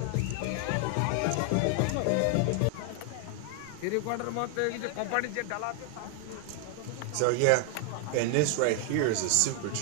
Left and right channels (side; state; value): both; different; correlation 0.00